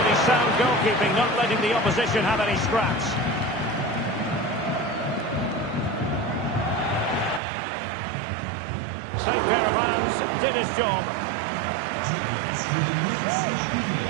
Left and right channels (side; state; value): left; drops out; at 7.4 s